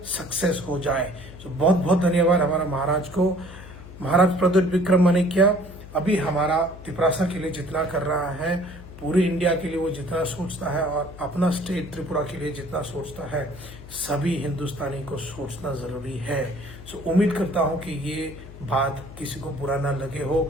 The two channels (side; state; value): left; noise; hum, 16 dB below the sound